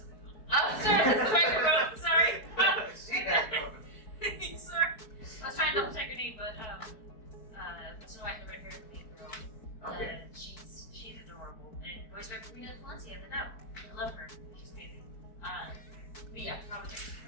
not my phone. Oh, sorry, that's the microphone. Sorry. She has Sorry. I was trying to double check her name, but Snow White and the Red Hair is the main girl. Okay. She's adorable. And voiced by Karina Valencia, the dub. I love her. She's amazing. But yeah, probably.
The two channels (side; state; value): right; late; 4.6 ms